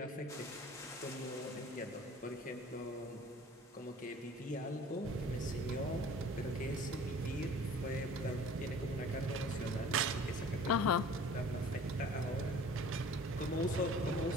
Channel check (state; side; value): normal; both; correlation 0.47